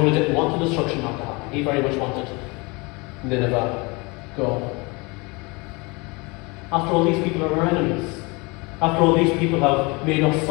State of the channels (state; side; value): quieter; right; 27.1 dB